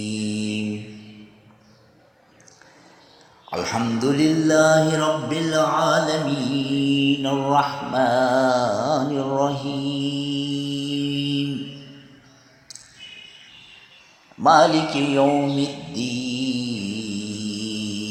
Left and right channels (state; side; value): identical; both; correlation 1.00